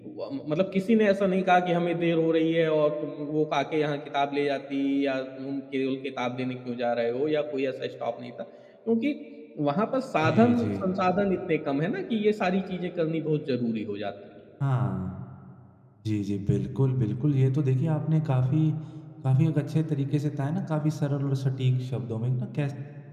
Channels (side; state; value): both; identical; correlation 1.00